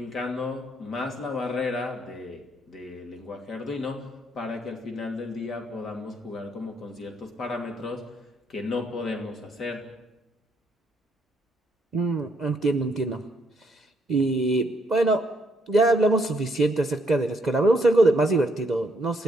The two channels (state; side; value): normal; both; correlation 0.72